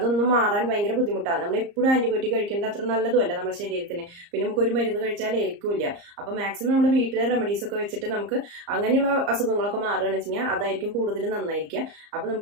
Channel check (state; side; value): late; left; 34 ms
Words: മാറാൻ ഭയങ്കര ബുദ്ധിമുട്ടാണ്. നമ്മൾ എപ്പോഴും ആന്റിബയോട്ടിക് കഴിക്കേണ്ട അത്ര നല്ലതുമല്ല നമ്മുടെ ശരീരത്തിന്. പിന്നെ നമുക്ക് ഒരു മരുന്ന് കഴിച്ചാൽ ഏൽക്കില്ല. അപ്പോൾ മാക്സിമം നമ്മൾ വീട്ടിലെ റെമഡീസ് ഒക്കെ വെച്ചിട്ട് നമുക്ക് അങ്ങനെയുള്ള അസുഖങ്ങളൊക്കെ മാറുകയാണെന്ന് വെച്ച് കഴിഞ്ഞാൽ അതായിരിക്കും കൂടുതൽ നന്നായിരിക്കുക. അപ്പൊ